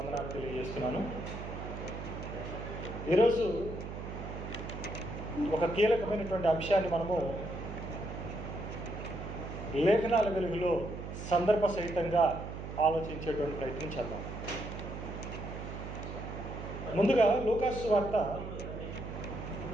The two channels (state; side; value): noise; right; hum, 8 dB below the sound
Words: తెలియజేస్తున్నాను. ఈరోజు ఒక కీలకమైనటువంటి అంశాన్ని మనము లేఖనాల వెలుగులో సందర్భ సహితంగా ఆలోచించేటువంటి ప్రయత్నం చేద్దాం. ముందుగా లూకాసు వార్త